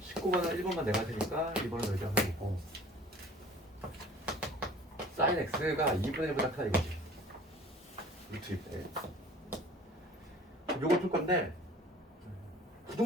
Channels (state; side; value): normal; both; correlation 0.47